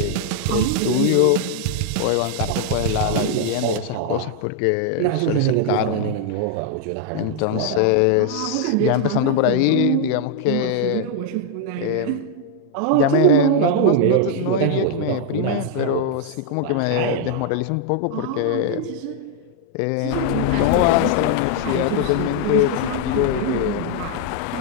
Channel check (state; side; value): different; both; correlation 0.00